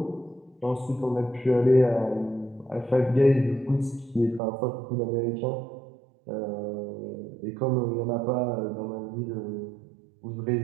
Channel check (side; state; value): left; drops out; at 4.4 s